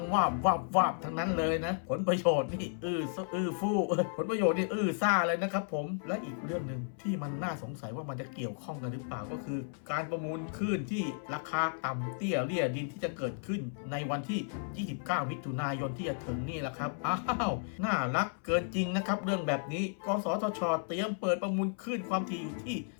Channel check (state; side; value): silent; right; 55 dB below the other